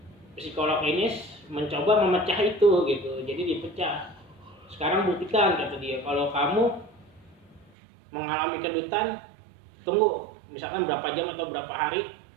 psikolog ini mencoba memecah itu gitu, jadi dipecah. Sekarang buktikan kata dia, kalau kamu mengalami kedutan, tunggu misalkan berapa jam atau berapa hari,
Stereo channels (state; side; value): drops out; left; at 7.7 s